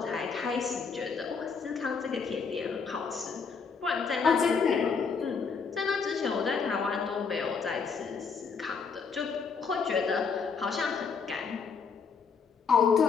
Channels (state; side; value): quieter; right; 5.5 dB